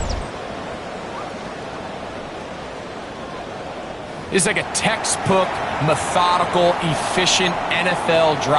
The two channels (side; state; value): both; identical; correlation 1.00